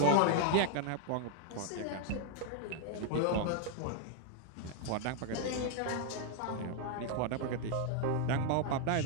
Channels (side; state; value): both; different; correlation 0.00